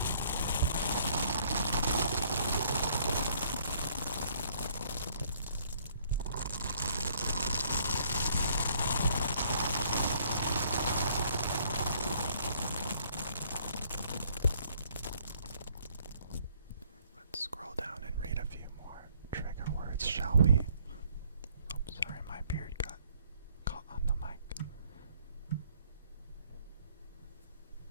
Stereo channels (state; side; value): inverted; both; correlation -0.63